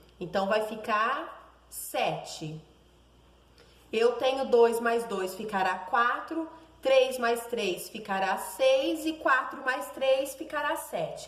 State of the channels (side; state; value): both; identical; correlation 1.00